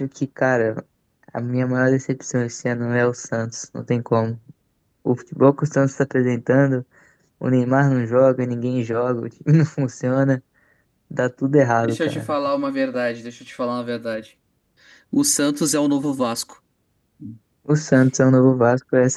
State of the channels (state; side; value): identical; both; correlation 1.00